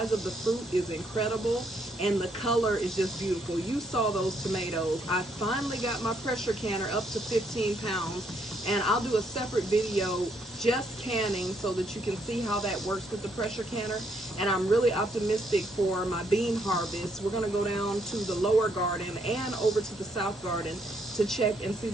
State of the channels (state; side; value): normal; both; correlation 0.72